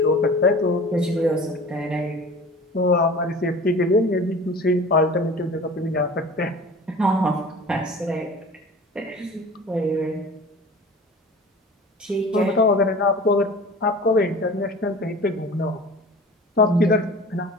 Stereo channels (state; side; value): normal; both; correlation 0.40